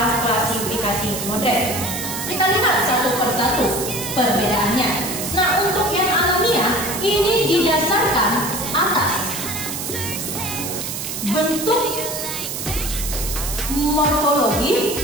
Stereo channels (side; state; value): right; noise; hiss, 5 dB below the sound